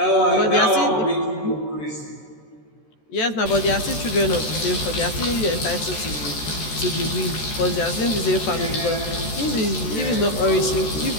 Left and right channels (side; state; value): right; late; 14 ms